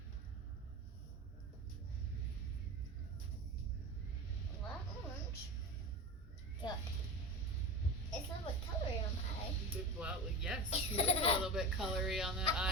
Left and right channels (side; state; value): both; normal; correlation 0.28